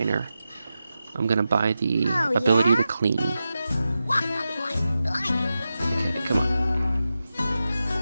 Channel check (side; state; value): both; inverted; correlation -0.91